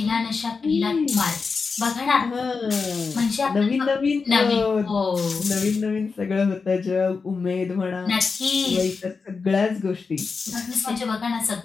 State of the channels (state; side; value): quieter; right; 4.8 dB